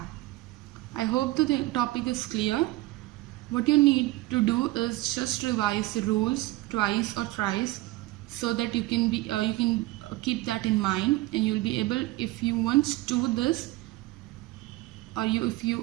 I hope the topic is clear. What you need to do is just revise the rules twice or thrice so that you can keep that in mind, and you will be able, if you once do this, or if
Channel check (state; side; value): quieter; left; 19.1 dB